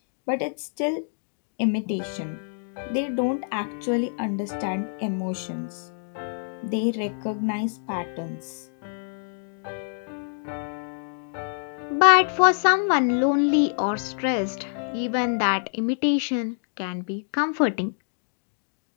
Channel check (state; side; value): silent; right; digital silence